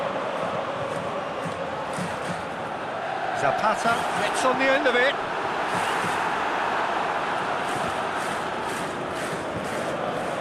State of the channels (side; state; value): both; identical; correlation 1.00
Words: Sp.Praha gets on the end of it.